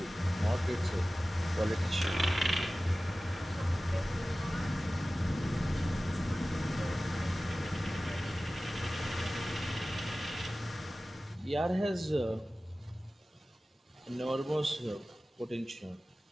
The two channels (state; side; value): normal; both; correlation 0.96